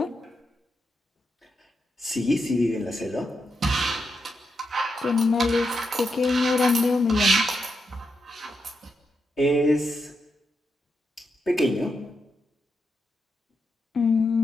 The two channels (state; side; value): normal; both; correlation 0.84